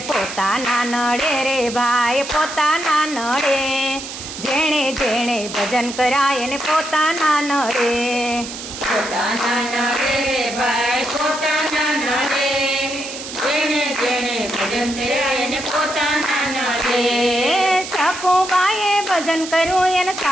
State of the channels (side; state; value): right; noise; hiss, 10 dB below the sound